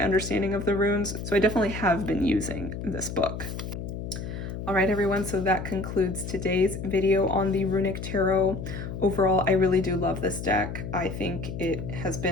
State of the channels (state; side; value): noise; left; hum, 7 dB below the sound